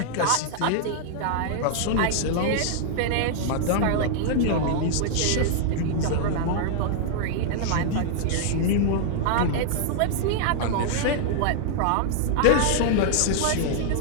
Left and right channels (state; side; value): different; both; correlation -0.01